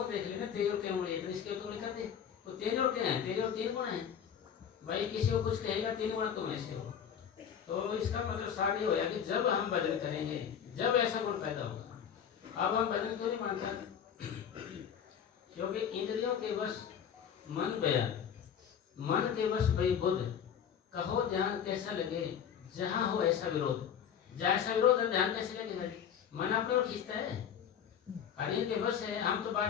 देख लेना तेरी और क्या उंगली है, तो इसकी ओर तो उंगली कर दे, तो तेरी और क्या है, तेरी और 3 गुण है। भाई किसी को कुछ कहेगा 3 गुण तुम ऐसे हो, तो इसका मतलब सारी होया कि जब हम भजन करेंगे, जब ऐसा गुण पैदा होगा। अब हम भजन क्यों नहीं मानता? क्योंकि इंद्रियों के बस मन गया, मन के बस भाई बुद्ध, कहो ध्यान कैसा लगे, जहाँ हो ऐसा विरोध। जैसा विरोध है ध्यान कैसे लगे भाई, मन अपने और खींचता है, अरे के बस है। हम तो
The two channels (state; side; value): quieter; right; 8.2 dB